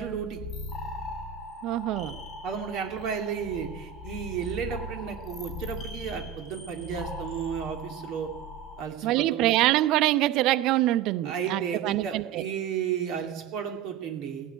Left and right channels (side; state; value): left; quieter; 10.1 dB